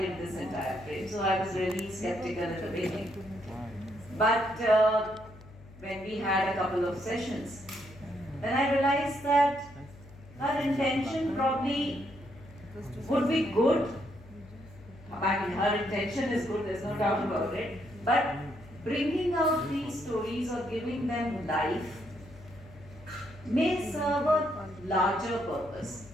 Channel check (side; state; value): left; noise; hum, 20 dB below the sound